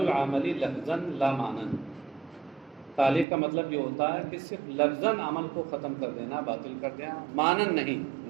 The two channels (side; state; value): left; drops out; at 3.2 s